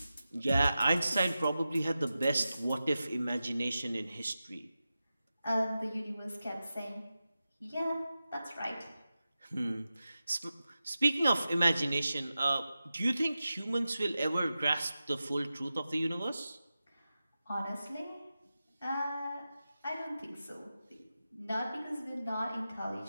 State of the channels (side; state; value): both; inverted; correlation -0.93